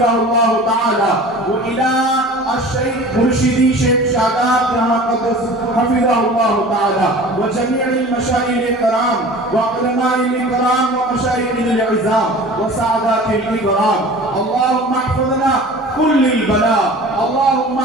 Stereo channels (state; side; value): normal; both; correlation 0.41